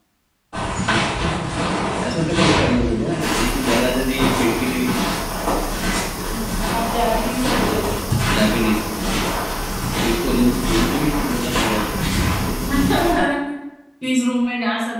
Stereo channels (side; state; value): both; identical; correlation 1.00